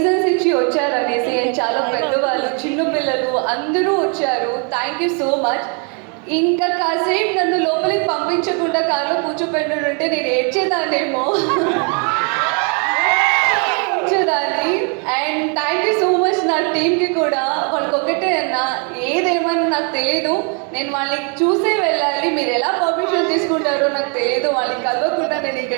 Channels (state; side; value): quieter; left; 37.6 dB